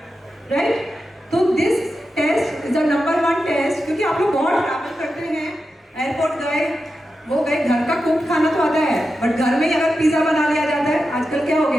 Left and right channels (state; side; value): normal; both; correlation 0.90